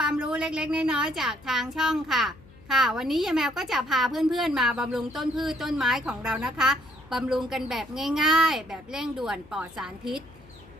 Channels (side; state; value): left; noise; hum, 24 dB below the sound